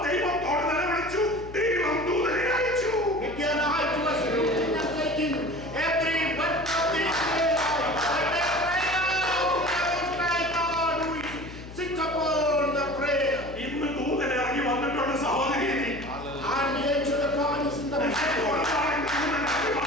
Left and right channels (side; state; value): left; noise; hum, 14 dB below the sound